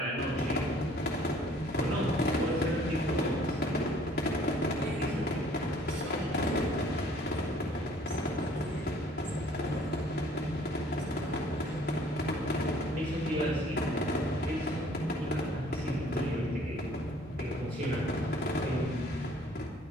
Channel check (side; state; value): both; normal; correlation 0.56